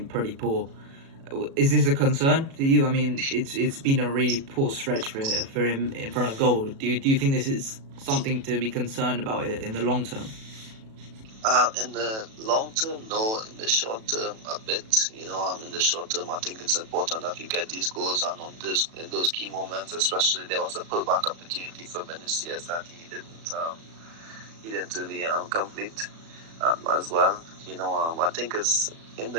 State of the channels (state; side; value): late; left; 36 ms